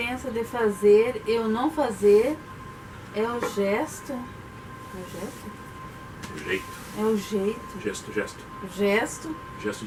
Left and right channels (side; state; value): both; identical; correlation 1.00